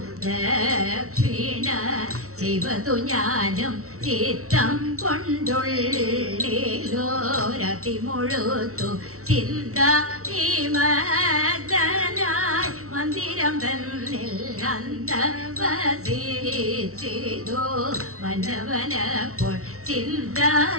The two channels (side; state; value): left; late; 0.63 ms